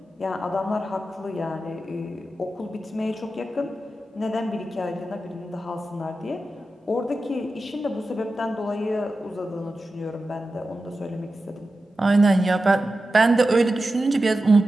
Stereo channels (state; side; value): normal; both; correlation 0.92